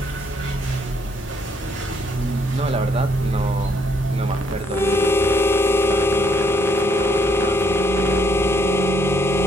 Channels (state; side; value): normal; both; correlation 0.71